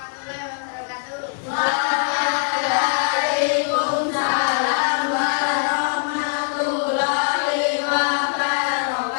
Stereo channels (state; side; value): silent; right; digital silence